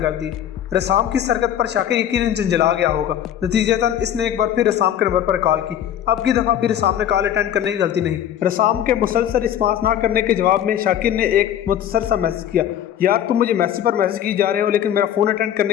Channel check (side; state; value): right; quieter; 10.4 dB